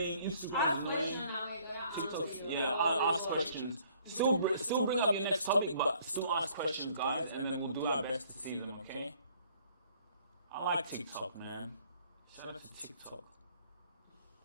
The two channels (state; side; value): inverted; both; correlation -0.60